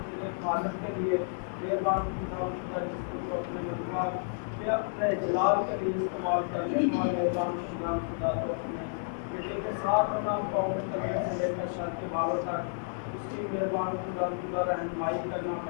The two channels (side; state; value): right; silent; 57 dB below the other